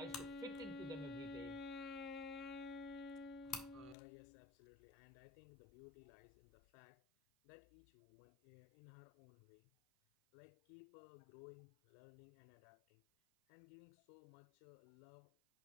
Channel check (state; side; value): drops out; right; at 4.0 s